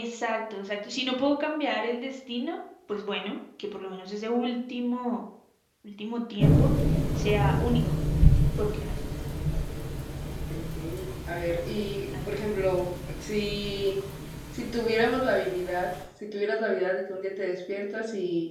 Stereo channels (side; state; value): both; identical; correlation 1.00